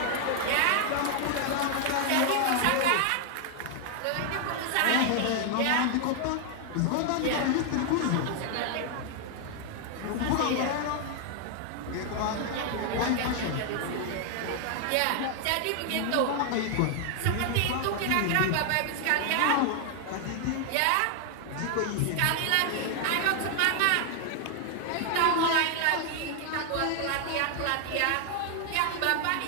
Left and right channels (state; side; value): different; both; correlation 0.00